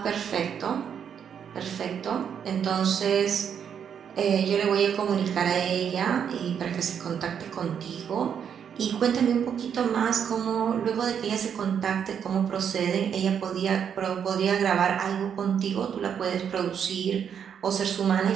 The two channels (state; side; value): quieter; left; 8.0 dB